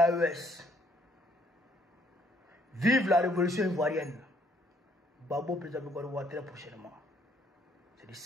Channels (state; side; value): normal; both; correlation 0.66